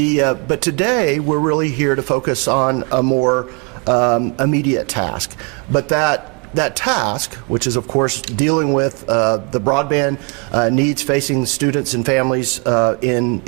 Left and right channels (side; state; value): left; quieter; 34.1 dB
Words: today, we're really here to focus on a more immediate task. But that task, which is of course dealing with the broadband needs facing students and families